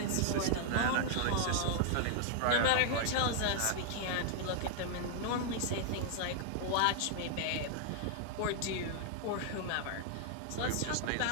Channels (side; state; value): both; different; correlation 0.00